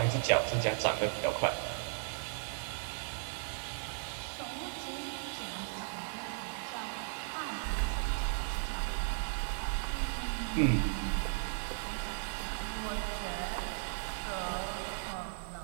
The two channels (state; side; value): silent; left; digital silence